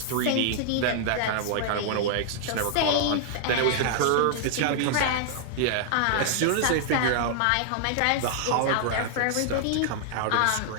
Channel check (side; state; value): both; different; correlation -0.01